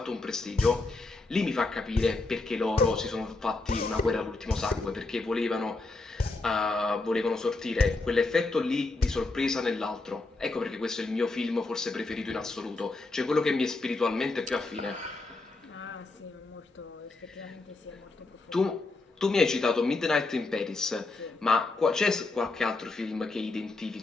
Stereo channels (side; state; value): right; quieter; 3.4 dB